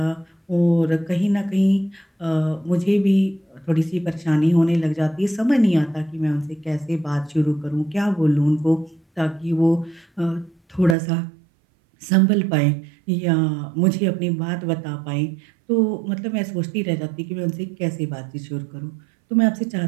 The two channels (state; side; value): drops out; left; at 11.0 s